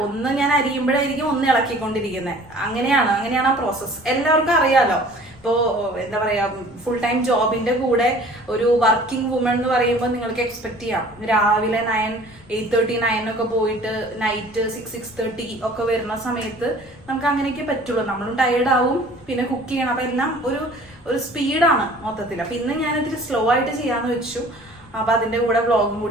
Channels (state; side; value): noise; left; rumble, 24 dB below the sound